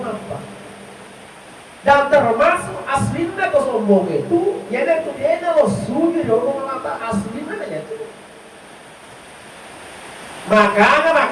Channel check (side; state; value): both; identical; correlation 1.00